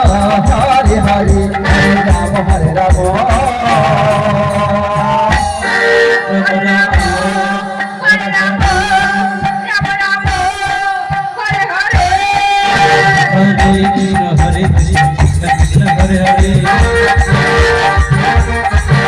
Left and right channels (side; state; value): both; identical; correlation 1.00